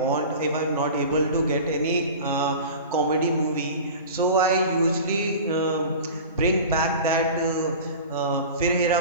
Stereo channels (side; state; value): both; inverted; correlation -0.35